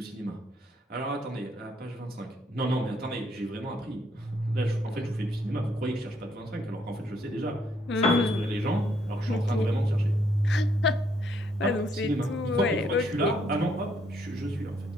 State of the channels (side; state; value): both; normal; correlation 0.71